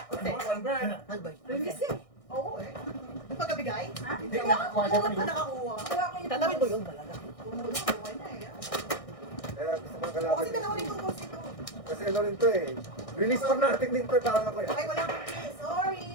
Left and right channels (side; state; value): right; late; 1.6 ms